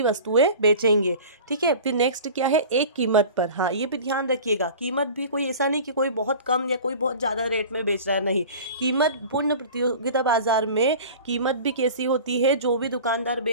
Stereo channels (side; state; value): both; inverted; correlation -0.39